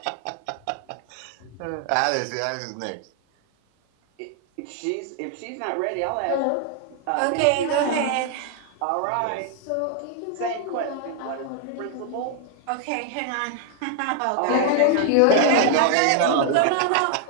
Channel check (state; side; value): different; both; correlation 0.00